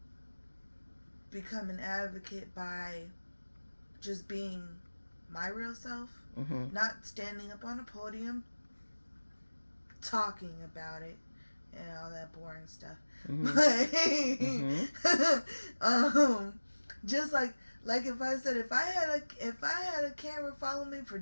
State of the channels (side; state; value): both; inverted; correlation -1.00